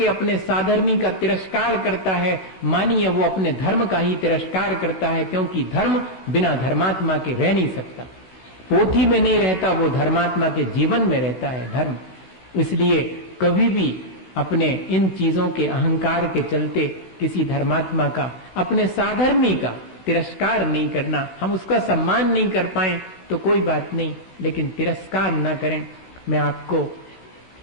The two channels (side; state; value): right; late; 16 ms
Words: अपने साधर्मी का तिरस्कार करता है, मानिए वो अपने धर्म का ही तिरस्कार करता है, क्योंकि धर्म बिना धर्मात्मा के रह नहीं सकता। पोथी में नहीं रहता, वो धर्मात्मा के जीवन में रहता है धर्म। इसलिए कभी भी अपने इन चीजों के अहंकार के चलते किसी धर्मात्मा का, अपने साधर्मी का तिरस्कार नहीं करना। हम उसका सम्मान नहीं कर पाए तो कोई बात नहीं, लेकिन तिरस्कार न करें। मैं आपको